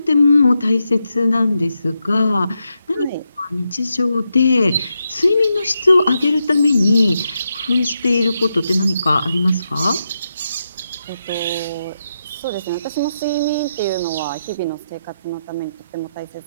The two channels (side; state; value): both; inverted; correlation -0.85